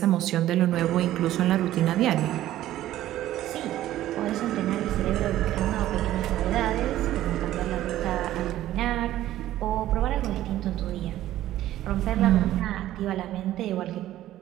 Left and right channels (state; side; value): quieter; left; 13.8 dB